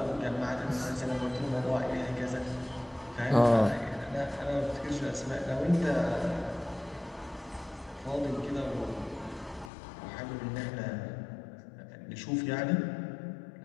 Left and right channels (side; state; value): right; drops out; at 9.7 s